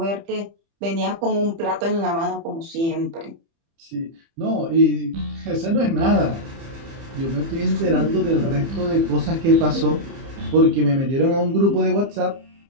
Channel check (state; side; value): late; left; 30 ms